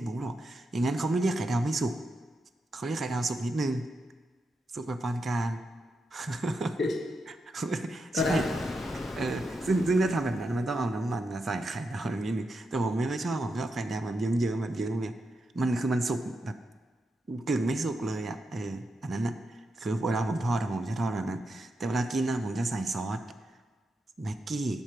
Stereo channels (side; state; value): both; normal; correlation 0.86